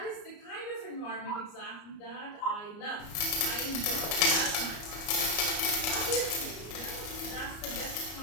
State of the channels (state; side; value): late; right; 34 ms